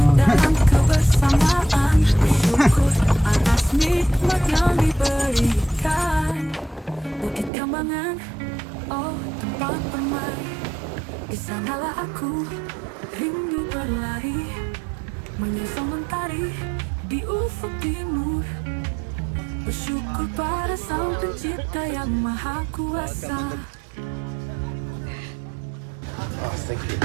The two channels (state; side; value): drops out; left; at 7.5 s